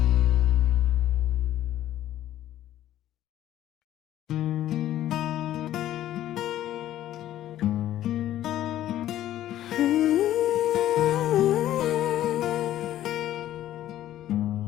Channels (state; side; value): quieter; right; 12.9 dB